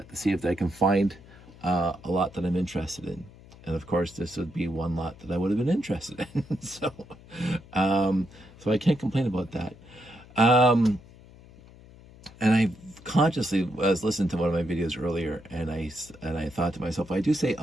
to see if I can find a lot that I'm interested in. And of course, this would be one lot that I would have been interested in. So I can't complain about that. And I consciously was listening to one of my videos earlier, and I thought to myself, I do say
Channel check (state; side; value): noise; left; hum, 22 dB below the sound